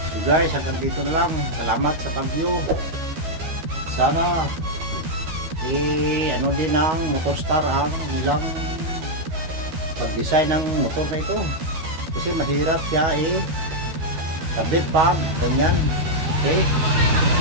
So guys, hanggang dito na lang. Salamat sa pag-view. Sana ano din ng Motorstar ang nilang pag-design ng motor na ito. Kasi mahirap siya kabit pa, ganyan. Okay.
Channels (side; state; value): left; late; 12 ms